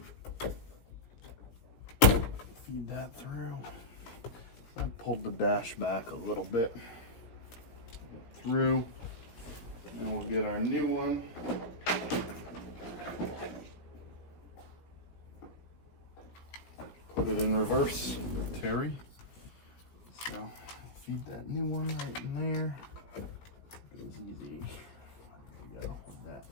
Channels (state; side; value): late; right; 17 ms